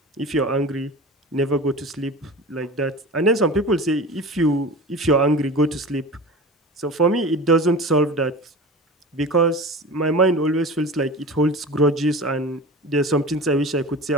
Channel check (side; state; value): both; normal; correlation 0.34